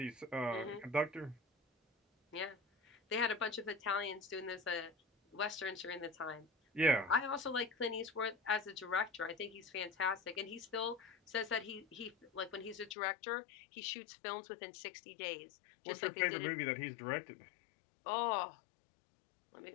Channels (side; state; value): right; drops out; at 13.0 s